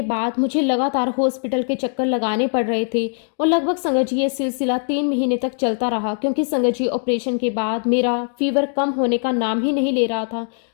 बाद मुझे लगातार हॉस्पिटल के चक्कर लगाने पड़ रहे थे और लगभग संगत जी ये सिलसिला 3 महीने तक चलता रहा, क्योंकि संगत जी ऑपरेशन के बाद मेरा फीवर कम होने का नाम ही नहीं ले रहा था।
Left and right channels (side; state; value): right; silent; 64 dB below the other